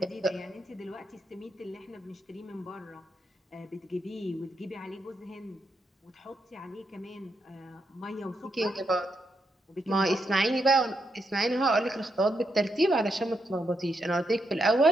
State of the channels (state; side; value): normal; both; correlation 0.82